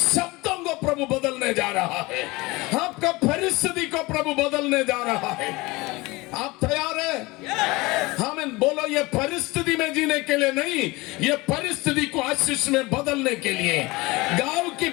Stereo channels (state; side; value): quieter; right; 22.5 dB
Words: को प्रभु बदलने जा रहा है, आपका परिस्थिति को प्रभु बदलने जा रहा है। आप तैयार हैं? हमें बोलो, ये परिस्थिति में जीने के लिए नहीं, ये परिस्थिति को आशीष में बदलने के लिए। गांव की